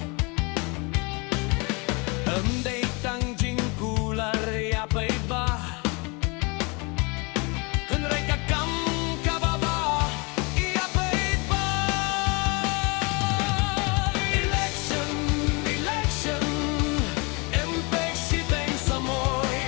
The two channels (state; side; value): quieter; right; 29.6 dB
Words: Amday tang jingkular Yapay ba Kunray kakam kababa Yapay ba Election, election Empek Shiteng Samoi